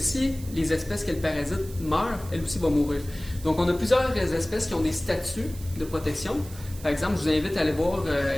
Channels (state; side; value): noise; right; hiss, 18 dB below the sound